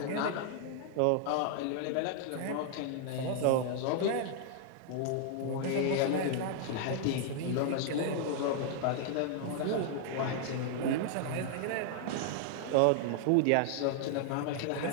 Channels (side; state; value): both; different; correlation 0.00